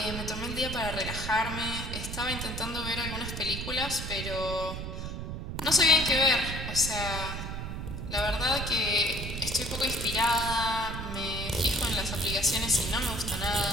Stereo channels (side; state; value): right; noise; rumble, 5 dB below the sound